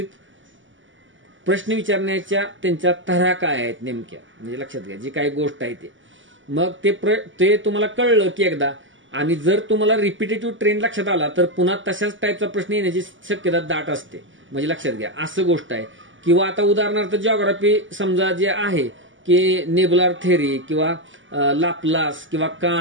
प्रश्न विचारण्याच्या त्यांच्या तऱ्हा काय आहेत नेमक्या, म्हणजे लक्षात घ्या जी काही गोष्ट आहे ते. मग ते तुम्हाला कळलं की एकदा, आणि जर तुम्हाला रिपिटेटिव्ह ट्रेंड लक्षात आला तर पुन्हा तशाच टाईपचा प्रश्न येण्याची शक्यता दाट असते, म्हणजे लक्षात घ्या असं गोष्ट आहे. किंवा आता उदाहरणार्थ जिओग्राफी समजा जे आहे की नेबुलार थेरी किंवा लाप्लास किंवा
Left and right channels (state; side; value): late; left; 0.56 ms